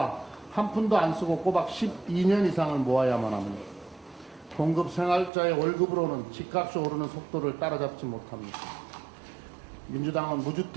한 푼도 안 쓰고 꼬박 12년 이상을 모아야만 합니다. 공급 생활자의 월급으로는 집값이 오르는 속도를 따라잡지 못합니다. 민주당은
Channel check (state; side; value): drops out; left; at 5.3 s